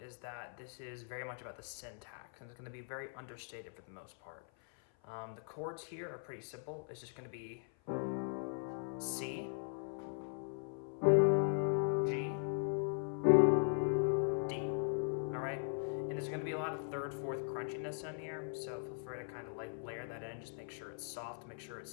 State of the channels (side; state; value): right; silent; 51 dB below the other